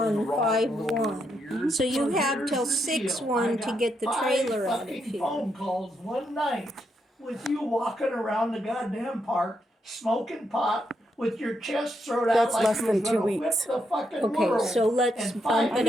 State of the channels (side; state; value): both; normal; correlation 0.80